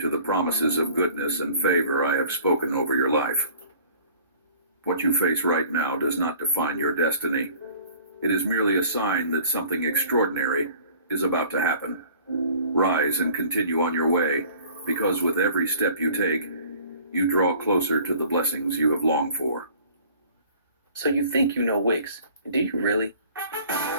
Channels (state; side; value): inverted; both; correlation -0.50